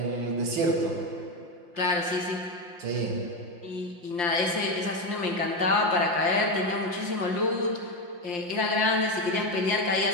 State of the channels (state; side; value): late; left; 5.7 ms